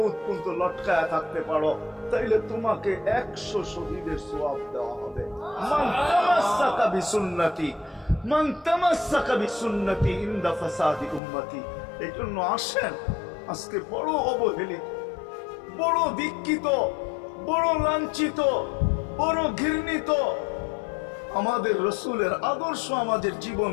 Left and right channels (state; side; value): drops out; right; at 11.2 s